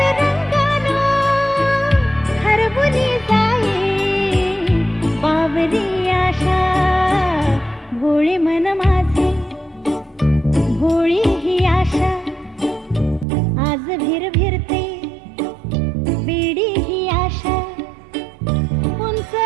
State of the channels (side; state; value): left; drops out; at 13.2 s